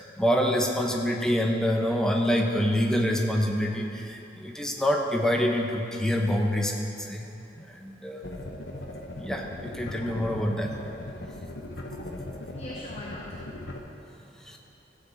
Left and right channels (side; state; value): both; normal; correlation 0.79